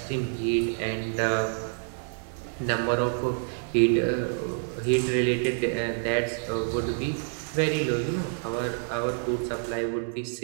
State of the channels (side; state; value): left; silent; 60 dB below the other